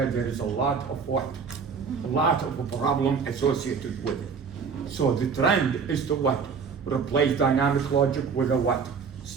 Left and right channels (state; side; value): quieter; left; 5.8 dB